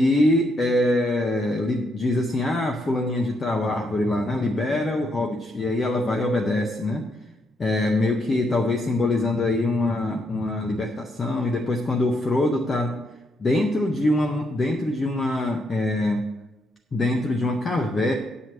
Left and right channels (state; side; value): normal; both; correlation 0.77